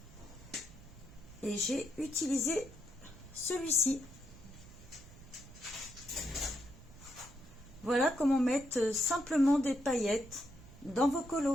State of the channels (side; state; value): right; noise; rumble, 19 dB below the sound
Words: et j'ai utilisé celui-ci. Voilà comment mettre simplement des paillettes dans vos